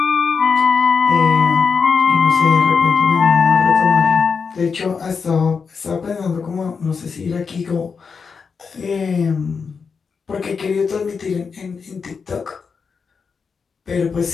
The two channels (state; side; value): quieter; right; 5.5 dB